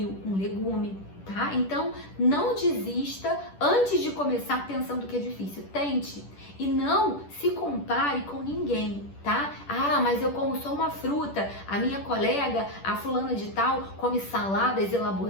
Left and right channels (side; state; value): right; late; 10 ms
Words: um legume, tá? Então, não desista antes de começar pensando que é difícil. Tente e não se compare com ninguém, tá? Ah, mas eu como só uma fruta, a minha colega, a fulana de tal, come saladas